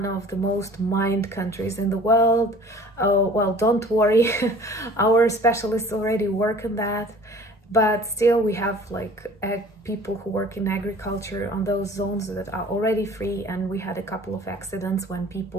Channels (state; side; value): normal; both; correlation 0.48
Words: of the most mined countries in the world. Oh, well, don't worry, our specialists already work on that. But still, we have like people who work in agriculture on those zones that are already free. And we had a couple of accidents when